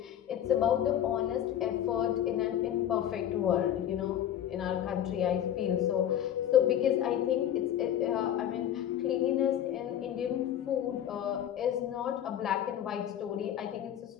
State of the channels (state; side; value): quieter; right; 10.7 dB